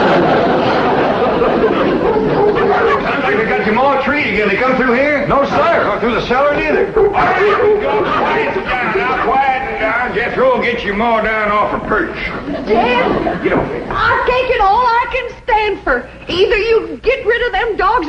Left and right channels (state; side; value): identical; both; correlation 1.00